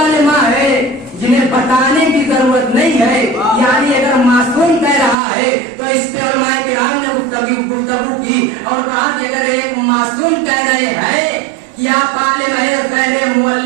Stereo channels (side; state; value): left; drops out; at 5.2 s